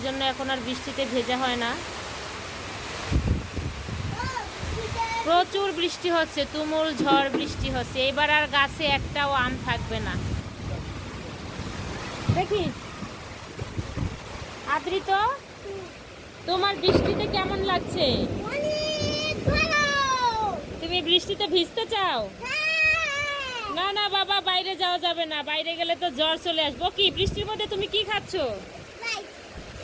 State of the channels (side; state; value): both; identical; correlation 1.00